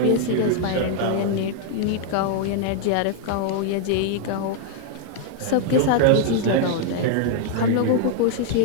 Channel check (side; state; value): both; different; correlation 0.00